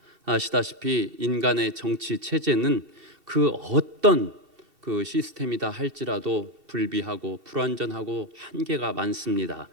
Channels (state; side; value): late; left; 2.7 ms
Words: 아시다시피 인간의 정치 체제는 그 어떤 그 시스템이다 할지라도 불비하고 불완전하고 한계가 많습니다.